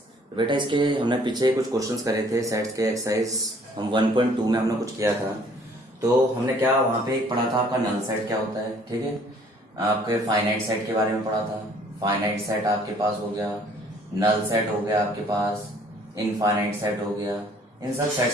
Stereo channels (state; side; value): normal; both; correlation 0.58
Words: बेटा इसके हमने पीछे कुछ क्वेश्चंस करे थे सेट्स के एक्सरसाइज हम 1.2 में हमने कुछ किया था। तो हमने क्या वहाँ पे एक पढ़ा था आपका नल सेट क्या होता है, ठीक है। आपके फाइनाइट सेट के बारे में पढ़ा था। फाइनाइट सेट आपके पास हो गया, नल सेट हो गया आपके पास, इनफाइनाइट सेट हो गया। इन सब